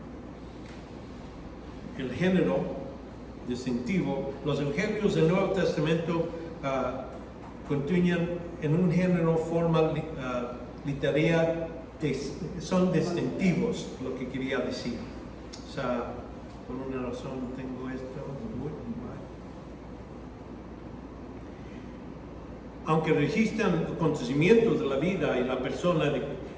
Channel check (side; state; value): both; identical; correlation 1.00